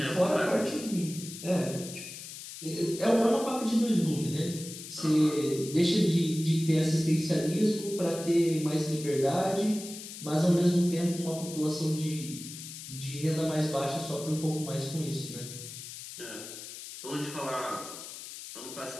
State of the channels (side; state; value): left; noise; hiss, 11 dB below the sound